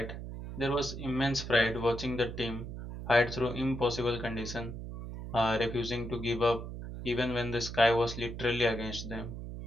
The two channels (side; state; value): right; noise; hum, 8 dB below the sound